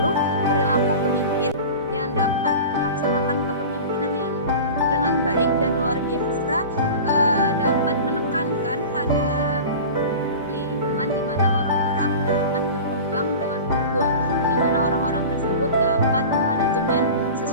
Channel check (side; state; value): both; inverted; correlation -0.34